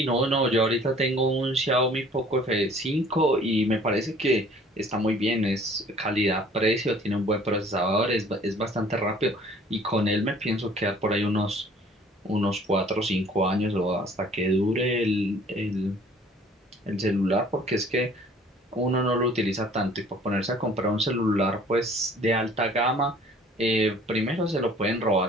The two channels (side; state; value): both; normal; correlation 0.53